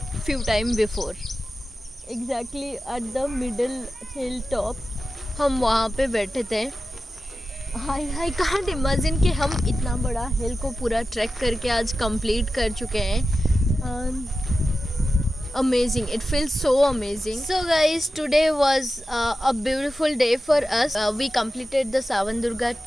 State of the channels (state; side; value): normal; both; correlation 0.93